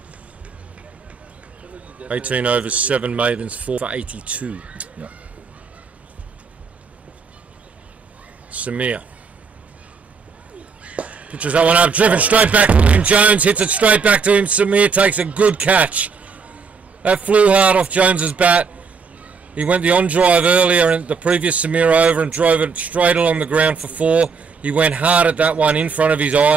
18 overs, 7 maidens, 4 for 82. Yeah. Samir. Pitches that one up, driven straight back to him. Jones hits it straight back to him. Samir takes a good catch. That flew hard off Jones's bat. He went the on drive earlier in the previous Samir over and drove it straight along the ground for 4. He went hard at that one in front of his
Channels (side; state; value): left; quieter; 5.3 dB